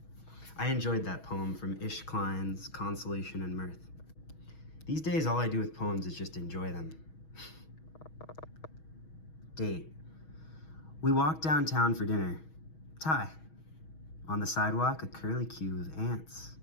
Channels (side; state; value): right; late; 6.3 ms